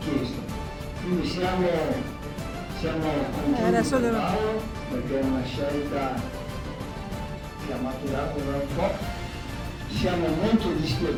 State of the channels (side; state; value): both; identical; correlation 1.00